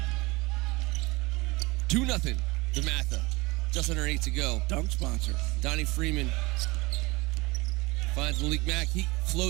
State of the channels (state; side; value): quieter; left; 23.5 dB